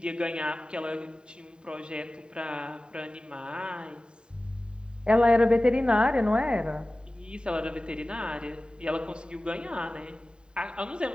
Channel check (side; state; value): left; late; 0.049 ms